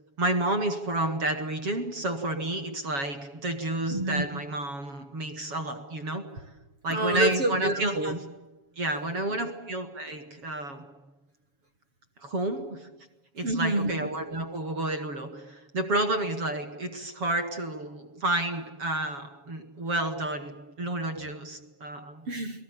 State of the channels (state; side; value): late; left; 7.2 ms